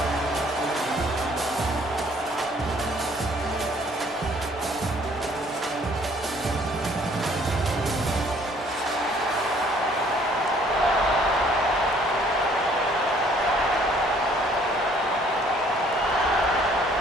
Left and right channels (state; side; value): normal; both; correlation 0.60